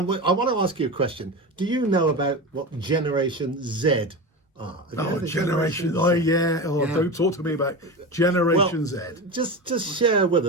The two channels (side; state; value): both; normal; correlation 0.24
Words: I want to ask you a question. Do you know about what Generation Z are? Generation. Oh, yeah. Oh, yeah. Don't talk to me about Generation Z. Just share with